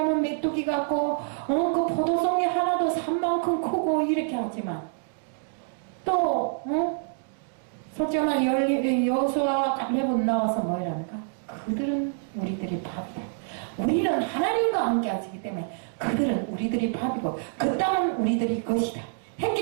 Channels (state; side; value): silent; left; digital silence